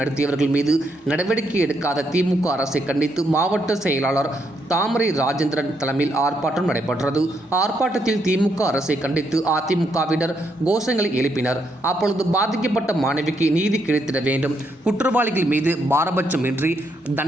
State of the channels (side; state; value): both; normal; correlation 0.77